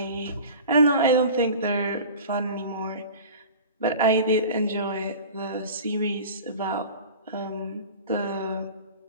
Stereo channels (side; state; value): both; inverted; correlation -0.38